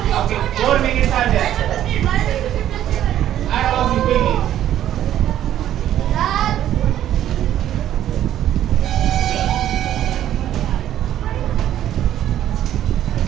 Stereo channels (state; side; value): quieter; left; 11.7 dB